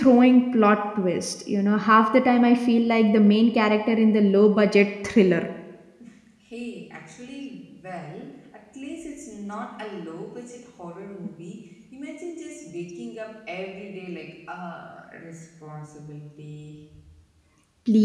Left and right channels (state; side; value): identical; both; correlation 1.00